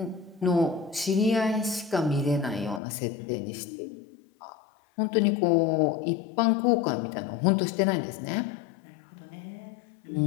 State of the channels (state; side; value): drops out; right; at 2.8 s